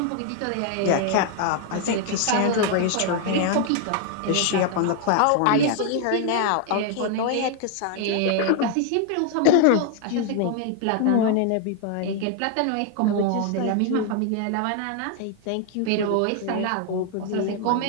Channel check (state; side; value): different; both; correlation 0.00